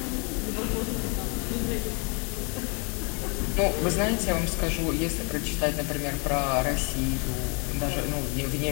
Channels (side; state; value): right; quieter; 35.3 dB